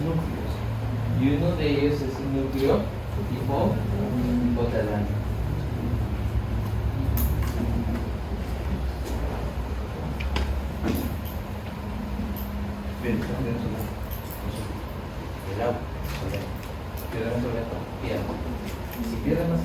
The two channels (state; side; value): identical; both; correlation 1.00